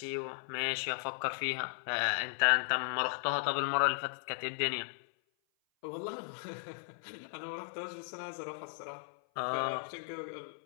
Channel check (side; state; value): right; silent; 54 dB below the other